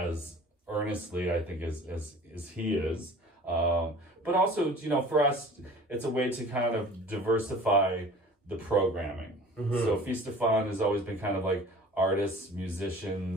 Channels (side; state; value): both; normal; correlation 0.45